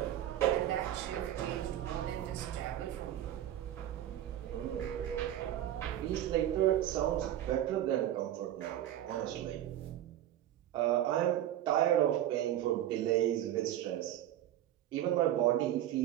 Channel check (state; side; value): quieter; left; 12.2 dB